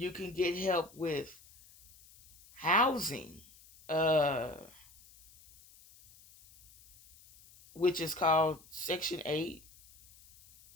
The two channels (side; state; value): left; noise; hiss, 24 dB below the sound